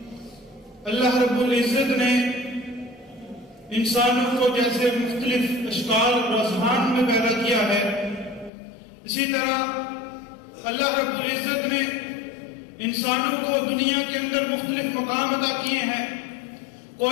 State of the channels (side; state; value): right; drops out; at 8.5 s